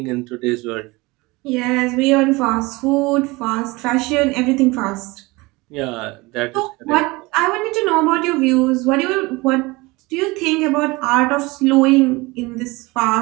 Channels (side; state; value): left; quieter; 23.2 dB